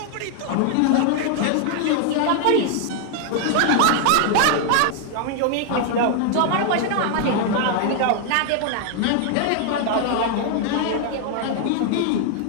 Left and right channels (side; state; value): both; different; correlation 0.00